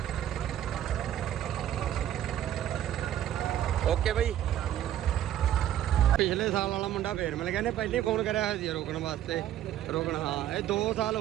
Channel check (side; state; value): left; quieter; 11.7 dB